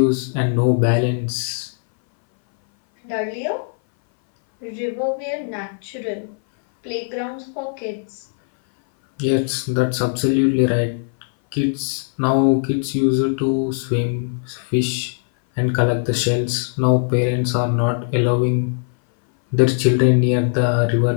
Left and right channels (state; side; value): silent; right; 60 dB below the other